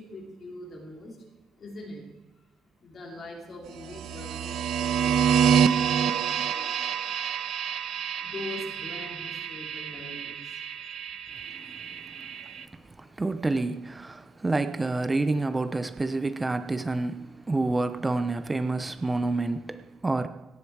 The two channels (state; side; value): quieter; left; 4.9 dB